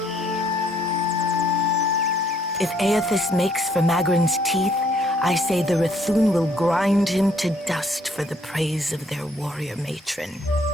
If Aethys makes for Magrin's teeth, I say the Rathun will grind him to dust for the praise of their warrior matron.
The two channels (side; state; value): both; normal; correlation 0.66